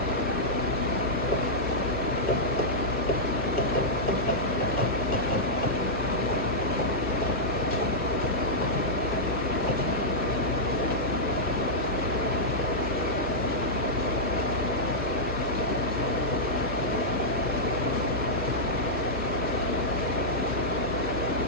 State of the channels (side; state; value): both; normal; correlation -0.09